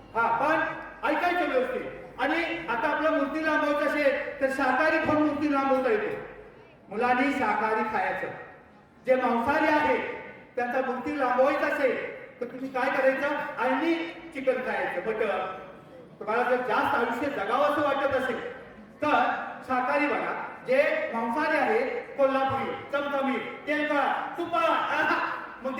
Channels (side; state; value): both; identical; correlation 1.00